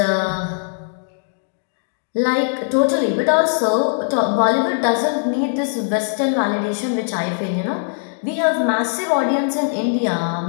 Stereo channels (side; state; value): right; silent; digital silence